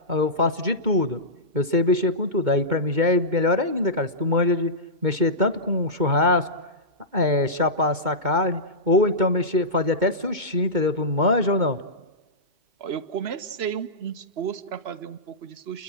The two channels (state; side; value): late; left; 2.2 ms